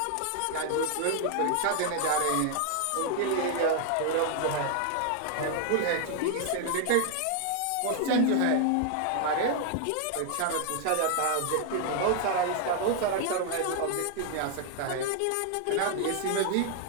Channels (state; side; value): different; both; correlation 0.00